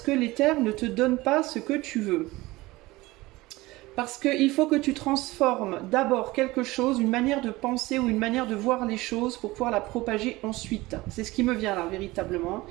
que l'éther ne te donne pas ce que tu veux? Parce qu'il faut que tu transformes d'abord quelque chose, une manière de penser ou une manière de voir les choses pour pouvoir la propager ensuite. C'est ce qui me vient là, véritablement.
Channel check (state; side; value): quieter; left; 20.1 dB